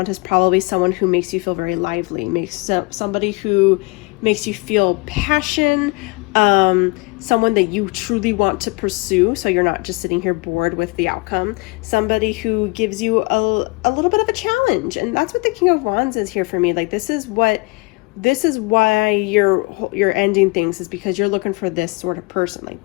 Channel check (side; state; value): right; quieter; 27.0 dB